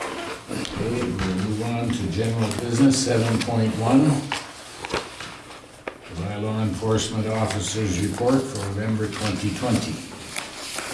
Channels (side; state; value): both; identical; correlation 1.00